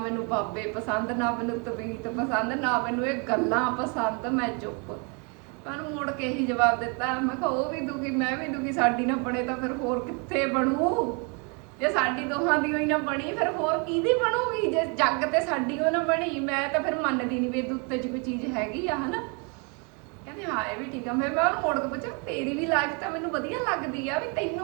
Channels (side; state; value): left; quieter; 34.3 dB